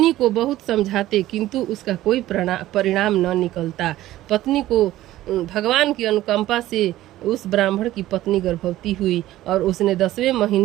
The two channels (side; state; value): left; quieter; 15.0 dB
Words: को बहुत समझाते, किंतु उसका कोई परिणाम न निकलता। पत्नी को भगवान की अनुकंपा से उस ब्राह्मण की पत्नी गर्भवती हुई और उसने 10वें